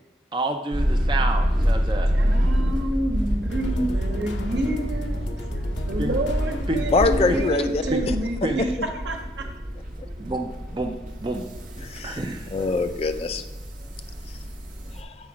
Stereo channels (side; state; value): both; normal; correlation 0.73